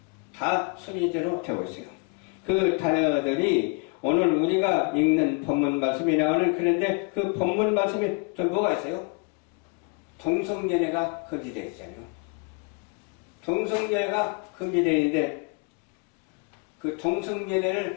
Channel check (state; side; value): quieter; right; 32.8 dB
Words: 다 순리대로 되고 있어요. 그 단어들이 오늘 우리가 읽는 본문 말씀이 나오는 그런데 그 본문 말씀에 또 뭐가 있어요? 동성연애가 금지되어 있잖아요. 동성연애가 금지되어 있는데 그